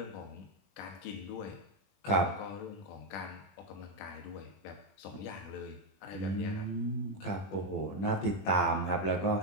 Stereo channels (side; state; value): right; late; 20 ms